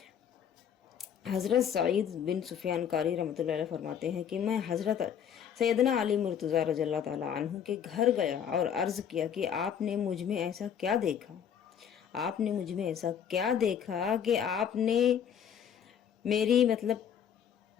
हज़रत सईद बिन सुफियान कारी रहमतुल्लाह अलैह फरमाते हैं कि मैं हज़रत सैयदना अली मुर्तज़ा रज़ियल्लाहु ताला अन्हु के घर गया और अर्ज़ किया कि आपने मुझ में ऐसा क्या देखा, आपने मुझ में ऐसा क्या देखा कि आपने मेरी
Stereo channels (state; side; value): quieter; right; 8.5 dB